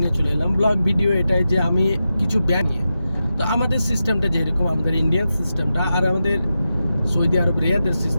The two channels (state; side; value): inverted; both; correlation -0.90